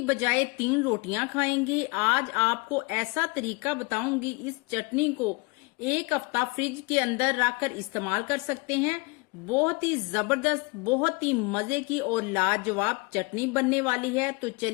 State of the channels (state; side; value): quieter; right; 28.2 dB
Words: बजाय 3 रोटियां खाएंगे। आज आपको ऐसा तरीका बताऊंगी, इस चटनी को 1 हफ्ता फ्रिज के अंदर रखकर इस्तेमाल कर सकते हैं। बहुत ही जबरदस्त, बहुत ही मजे की और लाजवाब चटनी बनने वाली है। तो